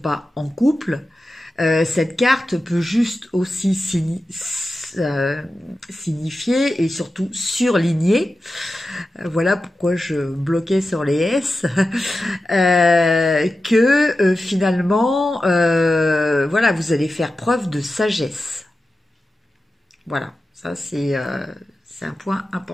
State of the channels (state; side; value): normal; both; correlation 0.93